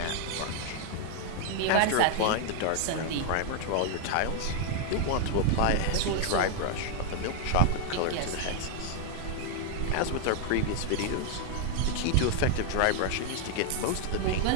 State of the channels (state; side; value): different; both; correlation 0.00